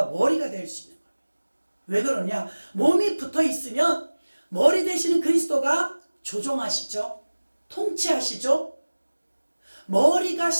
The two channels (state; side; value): inverted; both; correlation -1.00